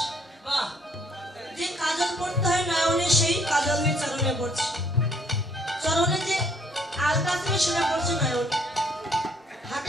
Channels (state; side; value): normal; both; correlation 0.64